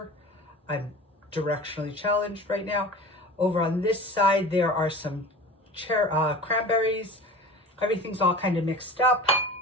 I'm directionally challenged right now. Over on this side, there are some cranberries. Everything's all kind of mixed up.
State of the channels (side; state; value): both; normal; correlation 0.37